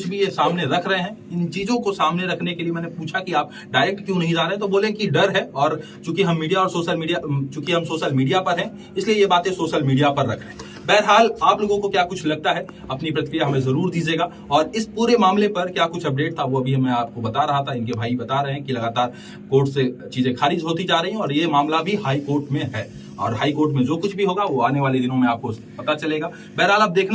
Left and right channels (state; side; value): identical; both; correlation 1.00